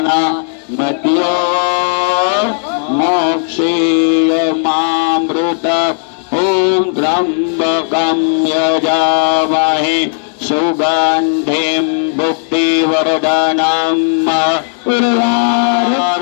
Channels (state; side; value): silent; right; digital silence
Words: मृत्योर्मोक्षीयमामृतात् ॐ त्र्यम्बकं यजामहे सुगन्धिं पुष्टिवर्धनम्